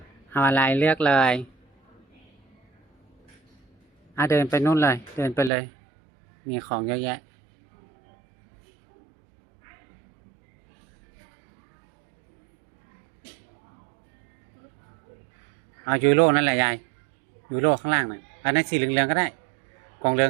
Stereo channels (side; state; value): left; drops out; at 5.5 s